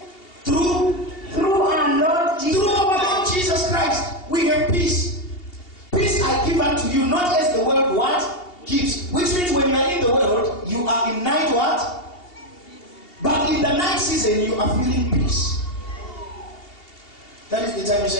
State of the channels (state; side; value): late; right; 2.7 ms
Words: Through our Lord Jesus. Through our Lord Jesus Christ, we have peace. Peace I give unto you, not as the world what gives. Which means when you are in the world, you are in night what? But in the night season, you are feeling peace. That is the time you